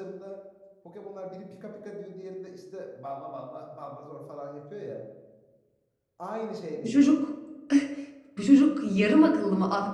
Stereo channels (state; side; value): identical; both; correlation 1.00